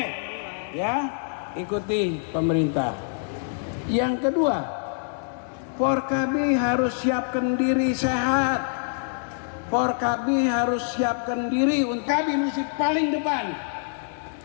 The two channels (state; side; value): silent; right; 61 dB below the other